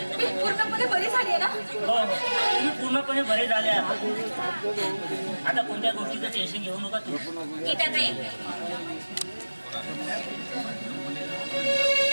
मी पूर्णपणे बरी झाली आहे ना तुम्ही पूर्णपणे बरे झाले आहात आता कोणत्या गोष्टीचं टेन्शन घेऊ नका तू गीताताई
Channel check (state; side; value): inverted; both; correlation -1.00